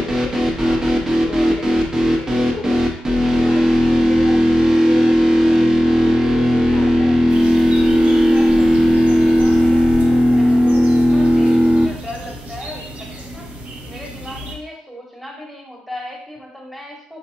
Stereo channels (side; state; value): both; normal; correlation 0.96